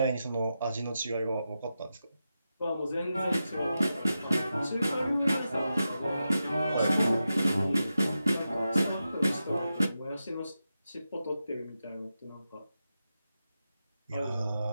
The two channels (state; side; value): inverted; both; correlation -0.90